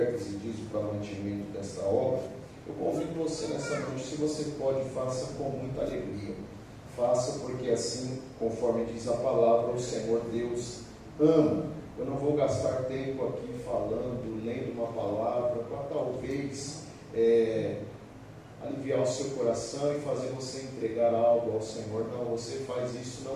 e dízimo para o mantimento desta obra. Eu convido você nessa noite, se você pode, faça com muita alegria. Faça porque assim, conforme diz a palavra, o Senhor Deus ama. Eu não vou gastar tempo aqui falando, lendo uma palavra, para talvez aliviar o seu coração e fazer você entregar algo ao Senhor. Não, você faz isso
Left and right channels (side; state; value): both; identical; correlation 1.00